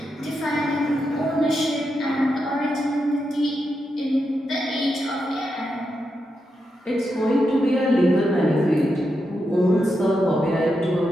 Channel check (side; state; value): both; normal; correlation 0.86